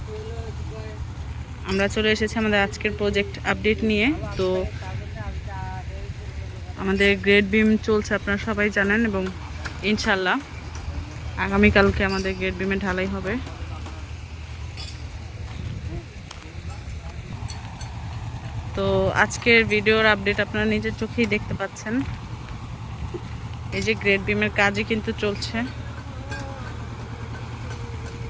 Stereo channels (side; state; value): both; identical; correlation 1.00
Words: আমরা চলে এসেছি আমাদের আজকের প্রজেক্ট আপডেট নিয়ে। তো আমাদের গ্রেড বিম চলছে, আপনারা সবাই জানেন, এবং ইনশাল্লাহ আগামীকালকে আমাদের গ্রেড বিমে ঢালাই হবে। তো আজকের ভিডিওর আপডেট আপনারা নিজের চোখেই দেখতে পাচ্ছেন। এই যে গ্রেড বিমের কাজই কিন্তু চলছে।